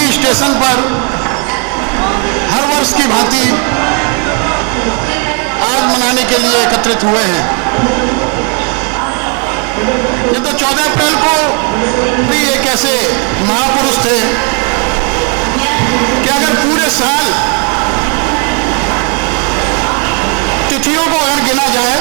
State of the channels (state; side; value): quieter; left; 37.7 dB